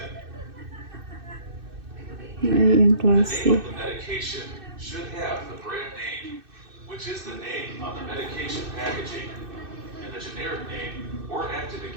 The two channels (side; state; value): left; late; 2.6 ms